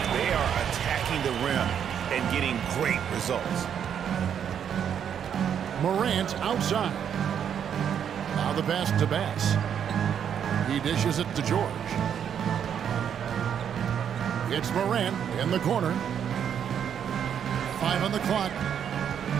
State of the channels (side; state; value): left; quieter; 8.5 dB